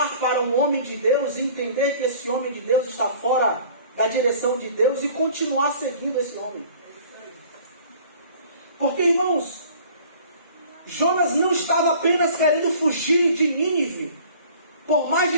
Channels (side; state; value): both; inverted; correlation -0.49